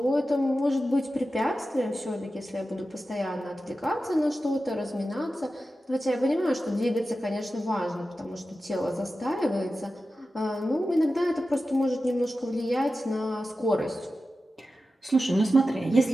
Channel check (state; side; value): normal; both; correlation 0.93